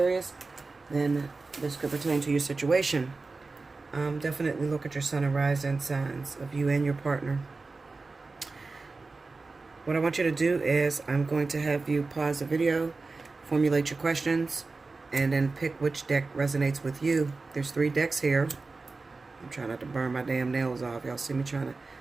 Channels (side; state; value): left; quieter; 3.8 dB